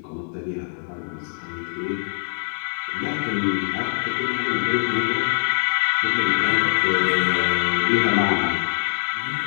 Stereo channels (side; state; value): right; silent; 63 dB below the other